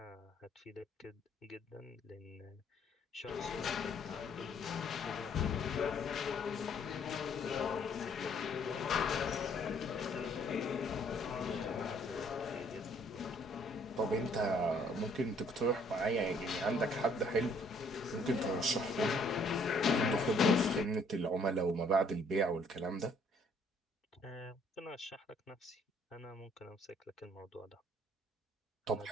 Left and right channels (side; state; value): both; normal; correlation 0.63